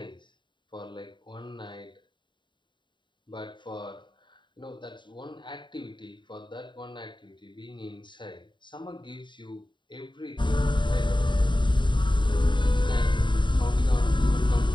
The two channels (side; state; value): right; late; 0.23 ms